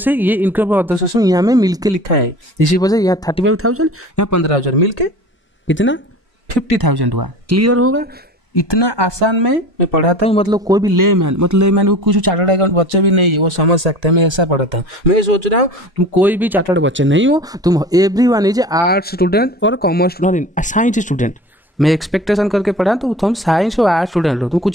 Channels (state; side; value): normal; both; correlation 0.38